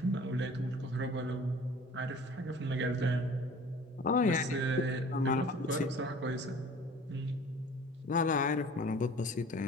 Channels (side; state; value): both; normal; correlation 0.46